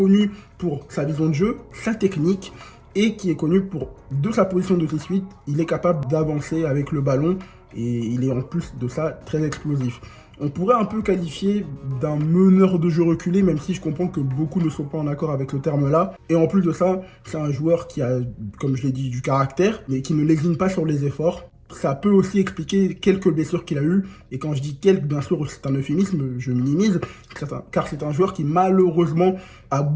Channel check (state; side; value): identical; both; correlation 1.00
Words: pour sa vision de jeu, sa technique, et qui est connu pour, de sa position de 6-8, il est capable d'avancer avec le ballon, et il est en plus de ça très explosif. On pourrait un peu qualifier d'un meneur de jeu reculé, même si je comprends que beaucoup ne sont pas en accord avec le terme-là. Et en plus de ça, c'est un joueur qui a, comme je l'ai dit, du caractère, mais qui ne lésine pas sur les efforts. Ça peut aussi expliquer quelques blessures qu'il a eues. Et quand je dis quelques, bien sûr, c'est un euphémisme, je minimise, car c'est un joueur qui, malheureusement, a